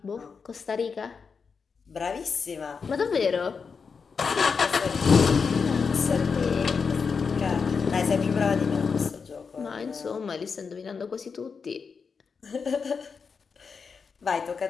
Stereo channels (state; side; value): quieter; right; 5.5 dB